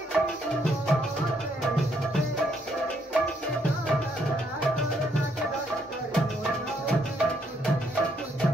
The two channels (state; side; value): normal; both; correlation 0.72